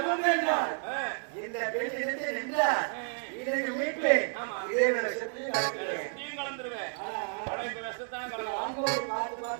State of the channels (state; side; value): silent; left; 57 dB below the other